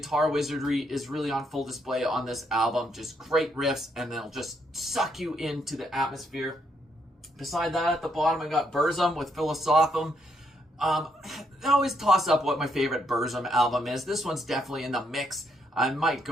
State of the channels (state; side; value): normal; both; correlation 0.75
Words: wizardry is really on full display on this album. Just great riffs, and they'll just suck you into the atmosphere. Beside that, at the bottom, I got Burzum with Philosophum. I always toss up what my favorite Burzum album is. This one's definitely in the mix. I might